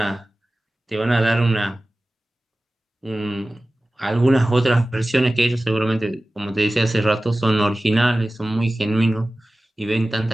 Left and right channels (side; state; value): both; normal; correlation 0.96